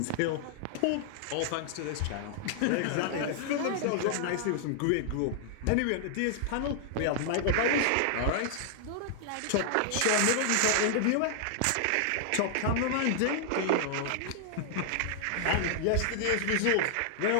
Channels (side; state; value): both; different; correlation -0.01